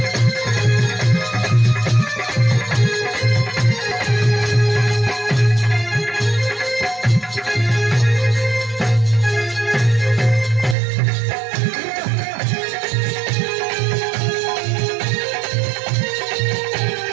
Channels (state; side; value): drops out; left; at 10.8 s